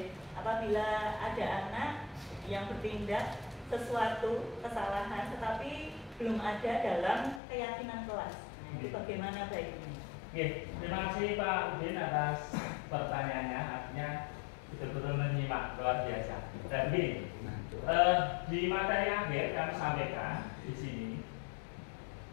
apabila ada anak yang bertindak sesuatu kesalahan tetapi belum ada dalam keyakinan kelas, itu bagaimana baiknya? Terima kasih Pak Udin atas pertanyaannya, artinya betul-betul menyimak luar biasa. Dan begini, di materi akhir kami sampaikan di sini,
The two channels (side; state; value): right; drops out; at 7.4 s